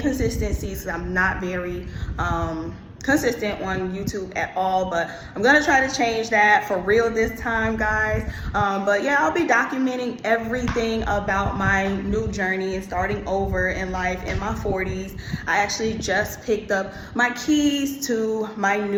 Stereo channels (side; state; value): both; identical; correlation 1.00